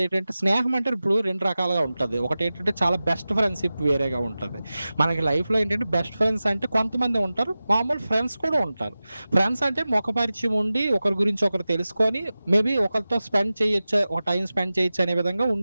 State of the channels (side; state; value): both; inverted; correlation -0.96